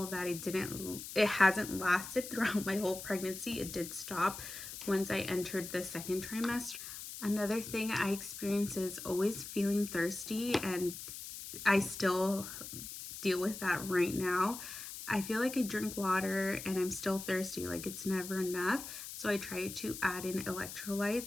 that it hasn't lasted throughout my whole pregnancy. It did stop once I entered the second trimester. Another thing I experience is always feeling thirsty, and I still deal with that right now. I feel like I drink water and I'm still thirsty, like it's never enough. So I try to add in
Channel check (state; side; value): noise; left; hiss, 10 dB below the sound